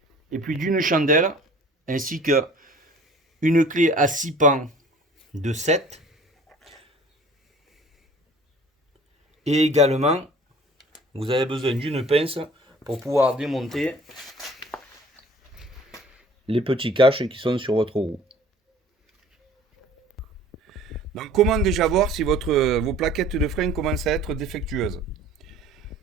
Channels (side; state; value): both; normal; correlation 0.49